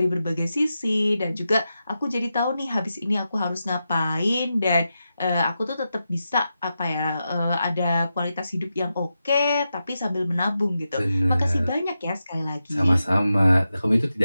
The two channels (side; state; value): both; inverted; correlation -0.89